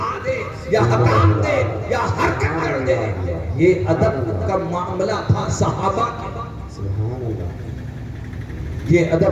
دے یا حکام دے یا حرکت کر دے۔ یہ ادب کا معاملہ تھا صحابہ کا، یہ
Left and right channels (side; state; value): both; identical; correlation 1.00